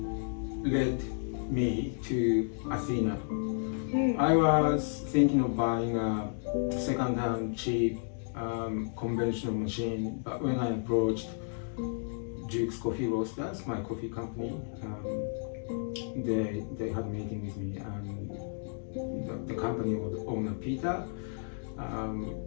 led me to Athena. I was thinking of buying a second-hand cheap conventional machine, but when I approached Duke's Coffee Roasters, my coffee company, they had a meeting with me, and the company owner Peter,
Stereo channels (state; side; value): silent; right; digital silence